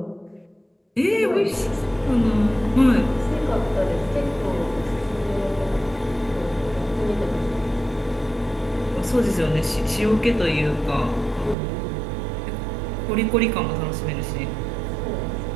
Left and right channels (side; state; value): left; drops out; at 11.6 s